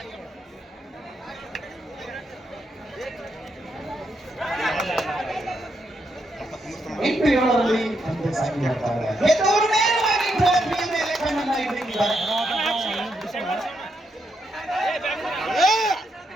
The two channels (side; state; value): both; normal; correlation 0.80